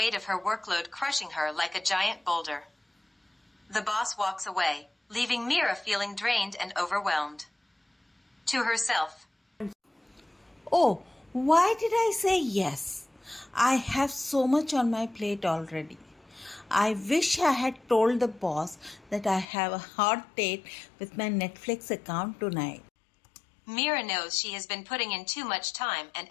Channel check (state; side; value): drops out; right; at 19.5 s